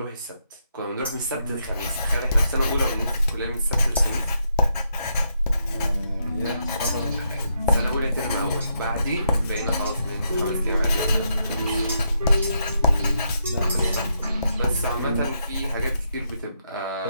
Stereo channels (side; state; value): both; inverted; correlation -0.79